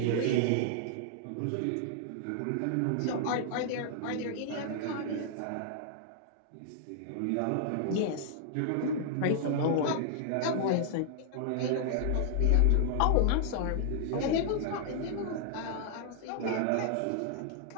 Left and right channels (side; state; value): both; different; correlation -0.01